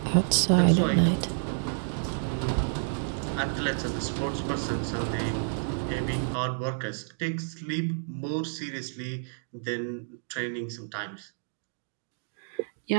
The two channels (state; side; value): silent; left; digital silence